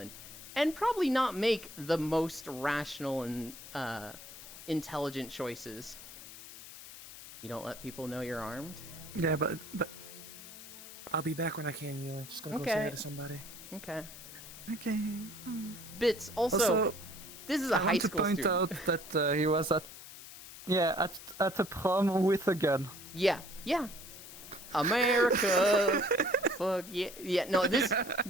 and probably not make the most rational and intelligent choices. You don't let people know you're armed? Yeah, but I'll be back when I can, Ewan. Just gonna go Okay. say hi to somebody. Okay. okay. Bits, also this is a I high want to school point student. out that he was at a prom with a gun. Yeah. America. Fuck yeah. No, this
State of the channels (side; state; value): left; noise; hiss, 14 dB below the sound